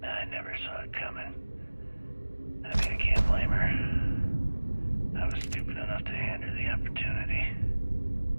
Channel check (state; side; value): inverted; both; correlation -1.00